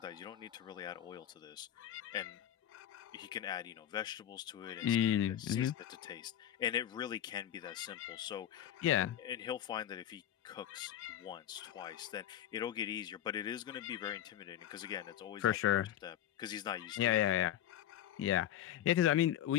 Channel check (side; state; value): right; quieter; 11.2 dB